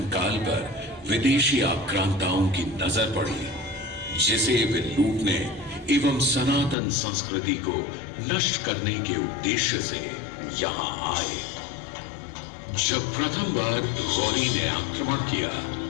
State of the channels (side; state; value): right; drops out; at 6.8 s